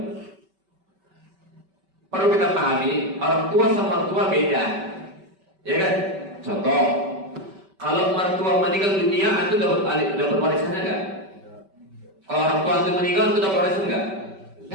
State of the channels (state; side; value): late; left; 5.2 ms